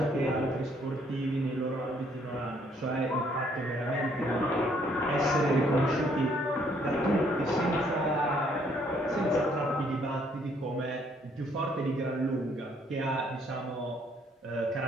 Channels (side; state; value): both; normal; correlation 0.66